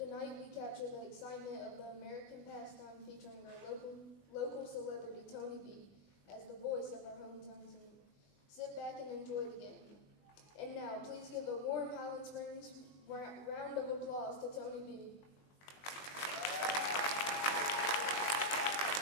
we capture the excitement of the American pastime, featuring our local celebrity Tony B as the voice of our hometown team. Sit back and enjoy the game. And now, please give a warm Highland Springs round of applause to Tony B.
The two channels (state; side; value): late; right; 20 ms